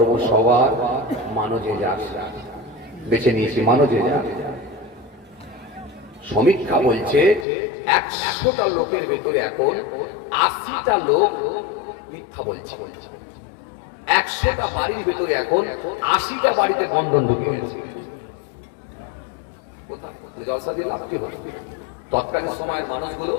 সবার, মানজে যাক, বেছে নিয়েছি মানজে যাক। সমীক্ষা বলছে 100টা লোকের ভেতরে এখন 80টা লোক মিথ্যা বলছে। 100টা বাড়ির ভেতরে এখন 80টা বাড়িতে বন্ধন ঢুকে গেছে। জলসা দিয়ে লাভ কি হবে? তৎকালীন সময়ের মানুষগুলো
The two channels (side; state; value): right; drops out; at 7.5 s